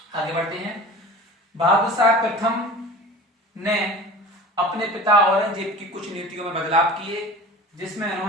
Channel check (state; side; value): normal; both; correlation 0.38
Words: आगे बढ़ते हैं। बहादुर शाह प्रथम ने अपने पिता औरंगजेब की कुछ नीतियों में बदलाव किए, जिसमें